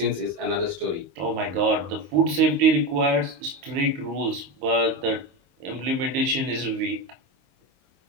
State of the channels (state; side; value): late; left; 22 ms